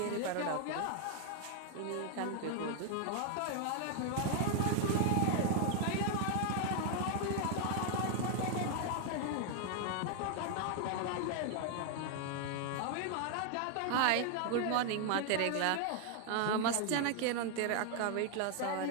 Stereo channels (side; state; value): both; different; correlation 0.00